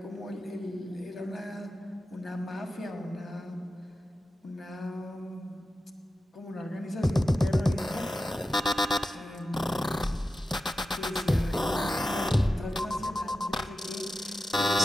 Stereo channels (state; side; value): normal; both; correlation 0.92